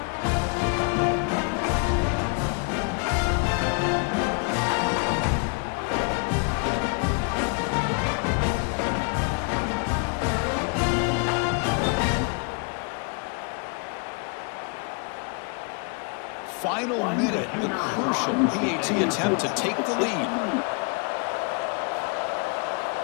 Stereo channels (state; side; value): quieter; right; 35.9 dB